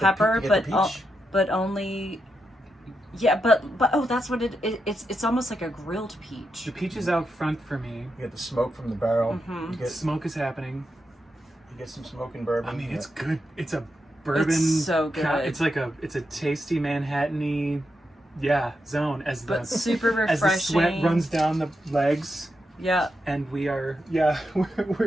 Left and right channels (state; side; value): normal; both; correlation 0.85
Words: pepper, pe- you but get the peach? but only. Yeah, but oh, that's what it's almost like a grilled peach. The peach is out front for me. You get the smoke from the barrel. Mhm. You Smoke is happening. get some smoke and bourbon. I mean, Yeah. it's good. It's a bourbon. It's so good. It's like it's a tasty Manhattan-y, zone as the But super refreshing. as the sweat runs down the legs, Yeah. and we are